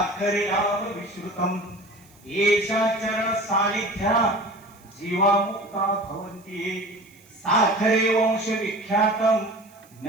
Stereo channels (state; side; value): noise; right; hiss, 28 dB below the sound